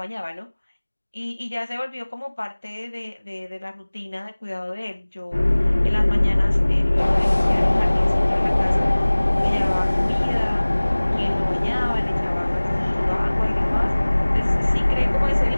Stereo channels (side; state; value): both; inverted; correlation -1.00